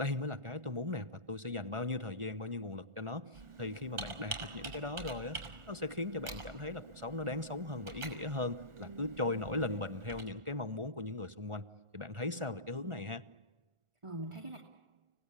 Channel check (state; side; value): late; left; 1.4 ms